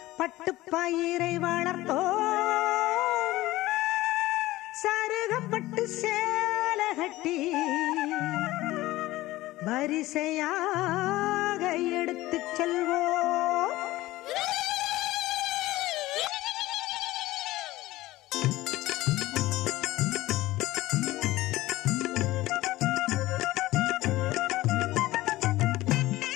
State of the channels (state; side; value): quieter; right; 17.5 dB